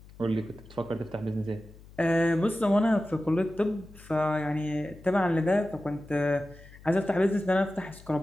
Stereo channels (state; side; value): noise; left; hum, 21 dB below the sound